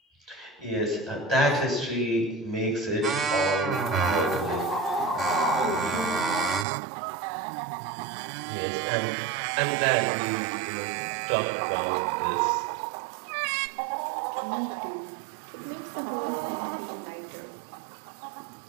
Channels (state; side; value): drops out; left; at 6.7 s